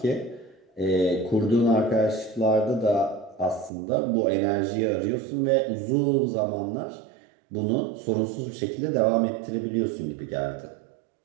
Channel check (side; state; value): left; drops out; at 3.7 s